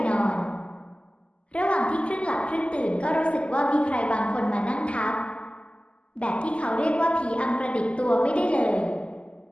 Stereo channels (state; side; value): late; right; 0.056 ms